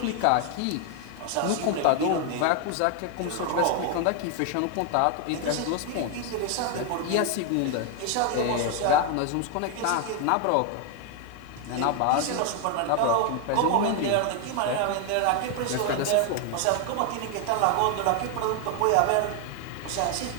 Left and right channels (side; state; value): both; different; correlation 0.01